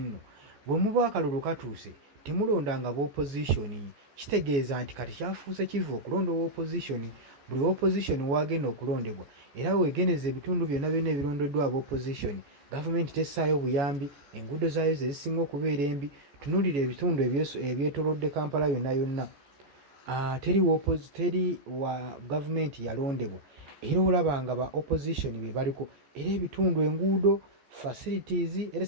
nno bwe muba akalulu katuuse temulondanga b'opposition. Kitegeeza nti kati kyafuuse kivu okulonda opposition. Buli opposition wagenda okulondebwa era weegeneza ebitundu byonna ebirondeddwa ab'opposition, gavumenti tessaayo buyambi, enguudo zaayo ze zisinga okubeera embi. Tunuulira ebitundu ebyetoolodde Kampala yonna teri wa gavumenti yalondebwa, era olaba nga ba opposition be baliko, era ebitundu enguudo facilities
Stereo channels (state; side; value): late; left; 14 ms